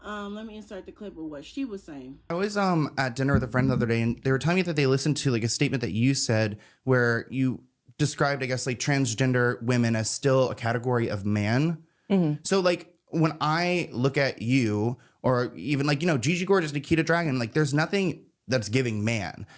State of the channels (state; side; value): identical; both; correlation 1.00